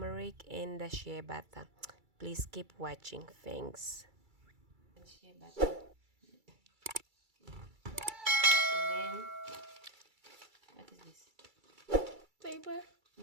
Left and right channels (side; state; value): left; late; 2.3 ms